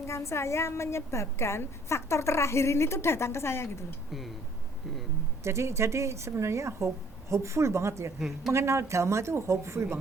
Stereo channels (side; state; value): both; normal; correlation 0.59